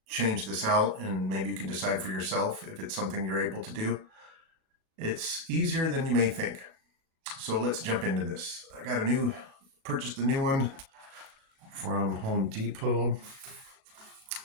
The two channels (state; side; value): late; left; 37 ms